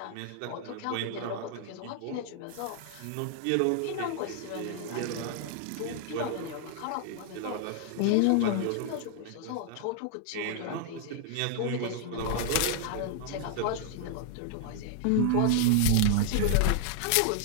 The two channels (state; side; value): different; both; correlation -0.01